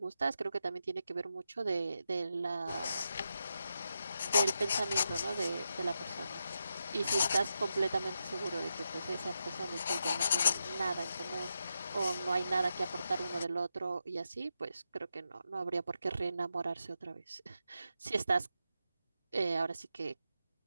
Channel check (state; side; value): inverted; both; correlation -0.86